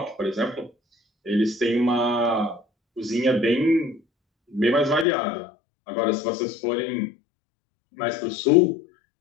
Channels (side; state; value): right; drops out; at 5.1 s